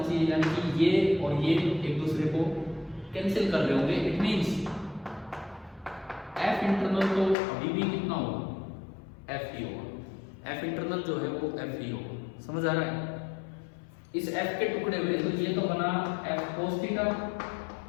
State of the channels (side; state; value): right; drops out; at 7.4 s